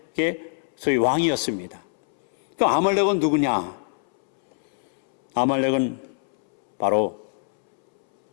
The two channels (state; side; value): silent; right; 63 dB below the other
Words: 소위 왕이었습니다. 그럼 아말렉은 누구냐? 아말렉은 바로